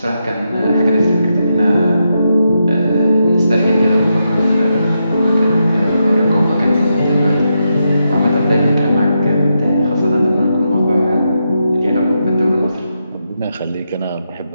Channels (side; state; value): both; inverted; correlation -0.84